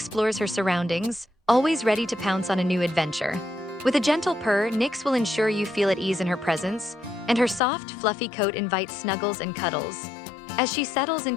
her surroundings, always ready to pounce on a new adventure. With a gentle purr, Nyx will ensure you feel at ease in her presence, and her soft, fluffy coat invites snuggles and cuddles. As she settles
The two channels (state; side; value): drops out; right; at 7.6 s